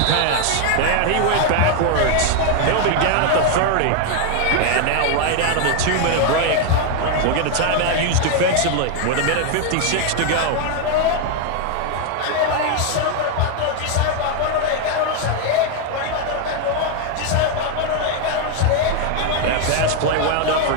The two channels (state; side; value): different; both; correlation 0.01